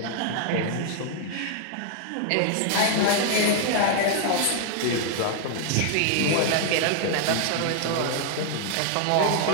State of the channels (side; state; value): both; different; correlation 0.00